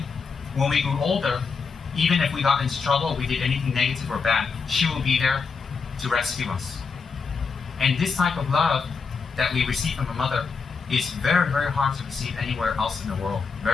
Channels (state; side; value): quieter; right; 5.2 dB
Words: when we grew older, even if we got into trouble, we did anything negative or bad, she will be there to rescue us. And this type of love that we receive from a mother is very, very hard to receive anywhere else in the world.